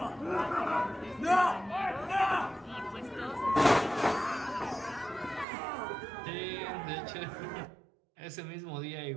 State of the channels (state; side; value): drops out; left; at 5.5 s